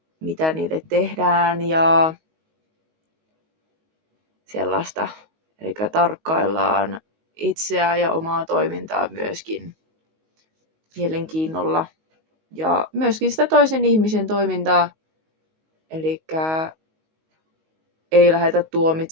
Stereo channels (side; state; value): left; late; 19 ms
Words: mitä niille tehdään ja sellaista. Eli tarkkaillaan itseään ja omaa toimintaa myöskin mielenkiinnolla ja myöskin sitä toisen ihmisen toimintaa. Eli ei lähdetä